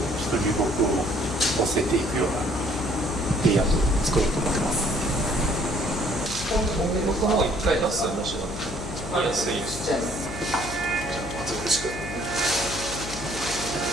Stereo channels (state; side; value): noise; left; hum, 10 dB below the sound